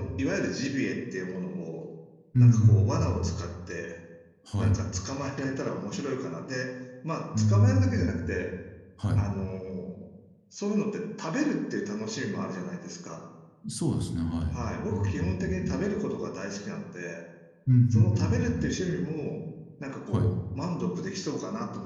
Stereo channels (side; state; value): both; identical; correlation 1.00